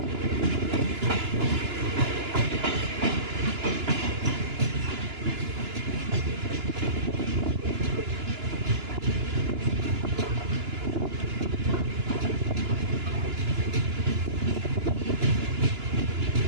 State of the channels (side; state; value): left; late; 2.9 ms